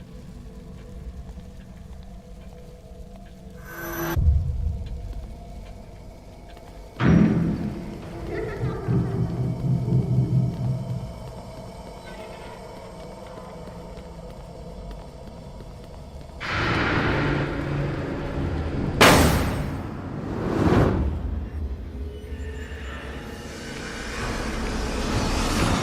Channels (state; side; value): identical; both; correlation 1.00